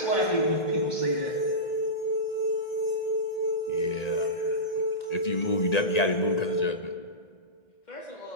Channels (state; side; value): late; right; 1.9 ms